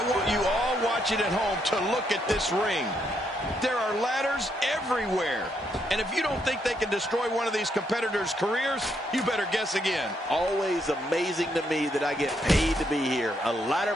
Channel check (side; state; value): both; normal; correlation 0.76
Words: want you all watching at home to look at this ring. There are ladders everywhere. And if you don't think they can destroy one of these competitors' careers, you better guess again. Always amazing to me that I get paid to be here. A ladder